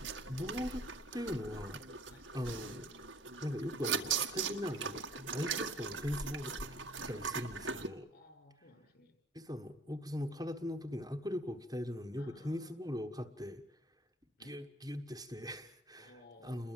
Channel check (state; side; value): normal; both; correlation 0.54